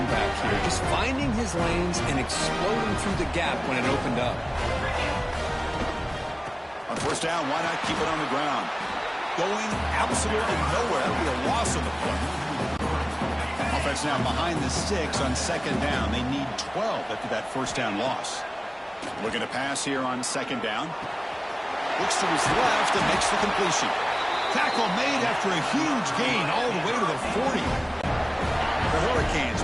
back here. Just finding his lanes and exploding through the gap when it opened up. On 1st down, why not keep it on the ground? Going absolutely nowhere. That'll be a loss of the play. Offense now behind the 6 on 2nd down. They need 12 after that 1st down loss. Looking to pass here on 2nd down. Looks to his left and makes the completion. Tackle made after a huge gain all the way to the 40. The Hurricanes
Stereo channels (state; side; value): identical; both; correlation 1.00